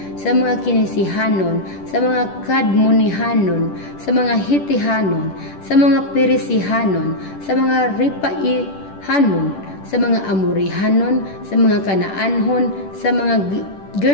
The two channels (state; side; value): late; right; 10 ms